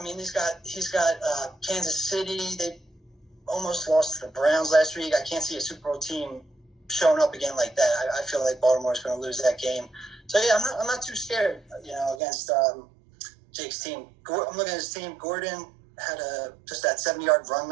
mean, he's got Kansas City. They almost lost to the Browns last week. I can't see a Super Bowl team showing up again like that. I feel like Baltimore's going to lose that game. So yeah, I'm not too scared, you know, against Jake's team. I'm looking at his team. Gordon had just that 70-yard run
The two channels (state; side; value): drops out; left; at 12.2 s